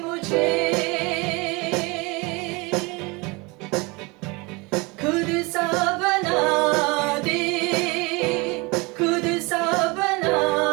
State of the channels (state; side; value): quieter; left; 26.5 dB